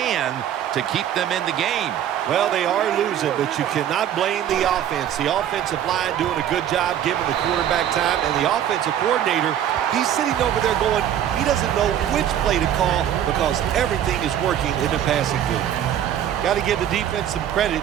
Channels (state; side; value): quieter; left; 10.4 dB